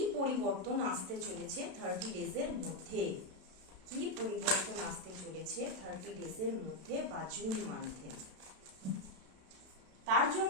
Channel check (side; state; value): left; late; 32 ms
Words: পরিবর্তন আসতে চলেছে 30 ডেজের মধ্যে, কি পরিবর্তন আসতে চলেছে 30 ডেজের মধ্যে বা জুন মান্থে। তার